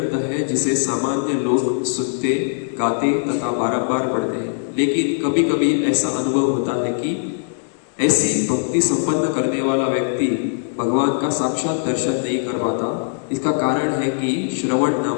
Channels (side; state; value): right; silent; digital silence